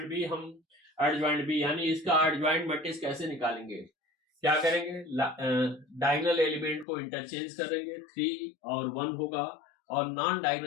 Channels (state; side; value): drops out; right; at 6.9 s